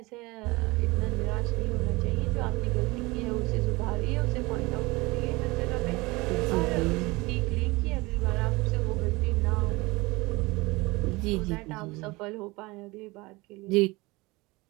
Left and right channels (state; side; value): quieter; left; 23.1 dB